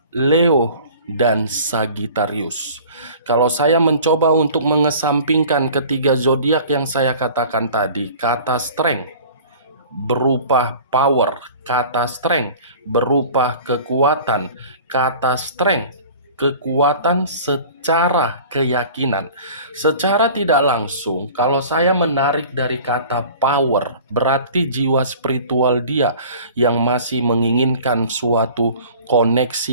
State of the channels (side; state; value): both; inverted; correlation -0.44